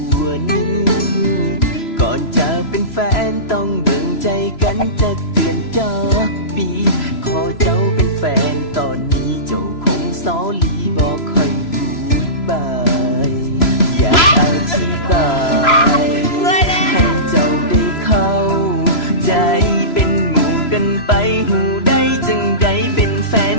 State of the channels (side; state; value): right; late; 3.0 ms